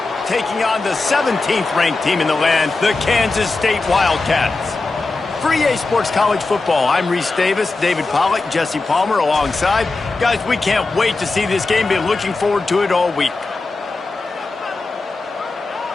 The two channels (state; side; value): quieter; right; 3.5 dB